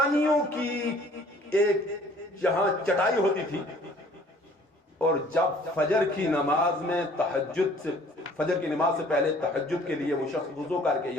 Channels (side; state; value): both; normal; correlation 0.55